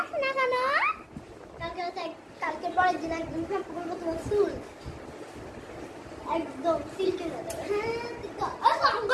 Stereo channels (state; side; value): identical; both; correlation 1.00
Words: না কেন কালকে পরের দিন একদম শ্যাম্পু করবো তোমার চুল একদম সিল্কের হয়ে যাবে হ্যাঁ